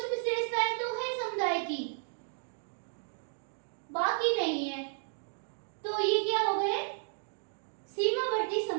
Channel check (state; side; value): silent; left; digital silence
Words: विशेषताएं तो है समुदाय की, बाकी नहीं है। तो ये क्या हो गए, सीमावर्ती